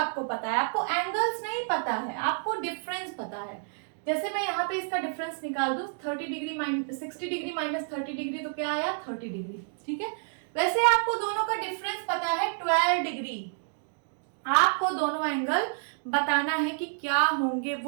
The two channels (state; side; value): silent; left; digital silence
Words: पता है, आपको एंगल्स नहीं पता है, आपको डिफरेंस पता है। जैसे मैं यहाँ पे इसका डिफरेंस निकाल दूं, 60 डिग्री माइनस 30 डिग्री, तो क्या आया 30 डिग्री, ठीक है। वैसे आपको दोनों का डिफरेंस पता है 12 डिग्री। आपको दोनों एंगल बताना है कि क्या होंगे